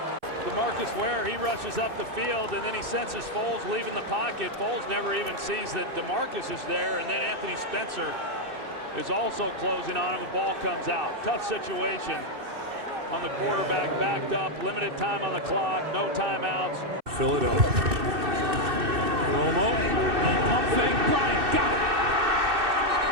DeMarcus Ware, he rushes up the field, and then he senses Foles leaving the pocket. Foles never even sees that DeMarcus is there, and then Anthony Spencer is also closing on him. The ball comes out. Tough situation on the quarterback, backed up, limited time on the clock, no timeouts. Philadelphia. Romo, pump fake, Bryant got it.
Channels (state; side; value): late; left; 2.6 ms